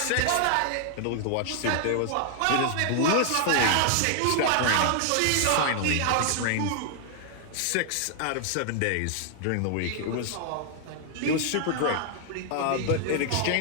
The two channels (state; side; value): different; both; correlation 0.00